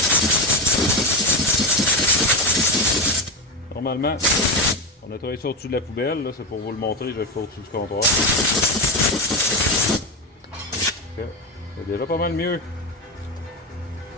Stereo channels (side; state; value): both; normal; correlation 0.15